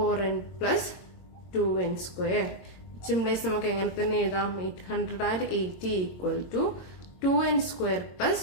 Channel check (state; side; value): late; right; 22 ms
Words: plus 2n square. Simplify നമുക്ക് എങ്ങനെ തന്നെ എഴുതാം, 880 equal to 2n square